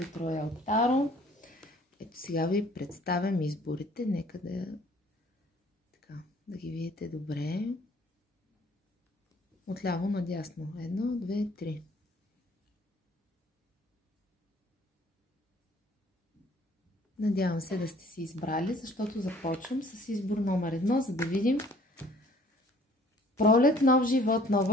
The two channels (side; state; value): both; normal; correlation 0.56